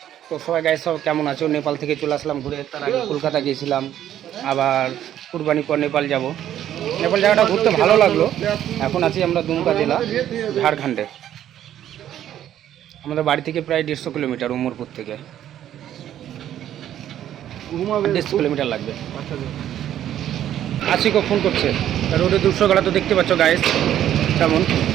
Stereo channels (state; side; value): quieter; left; 11.3 dB